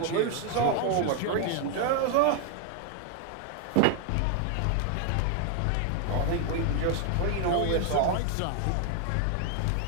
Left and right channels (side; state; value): both; different; correlation 0.00